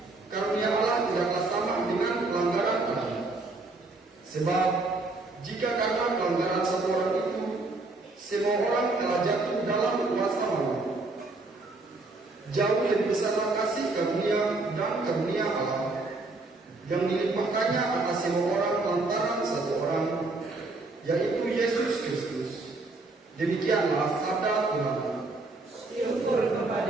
karunia Allah tidaklah sama dengan pelanggaran Adam. Sebab jika karena pelanggaran satu orang itu semua orang telah jatuh dalam kuasa maut, jauh lebih besarlah kasih karunia dan karunia Allah yang dilimpahkannya atas semua orang lantaran satu orang, yaitu Yesus Kristus. Demikianlah sabda Tuhan. Syukur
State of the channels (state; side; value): quieter; left; 3.3 dB